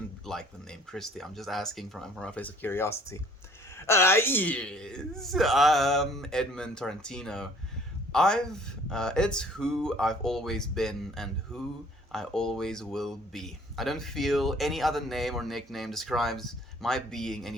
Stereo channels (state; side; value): normal; both; correlation 0.55